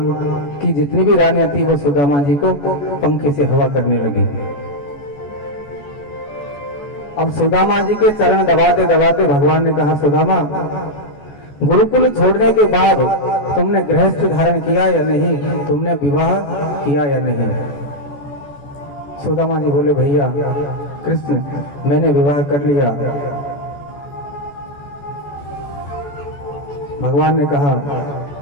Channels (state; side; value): late; right; 14 ms